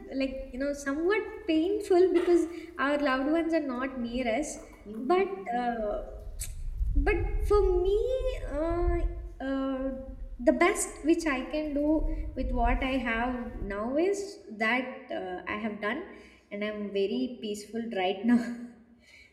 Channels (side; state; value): both; identical; correlation 1.00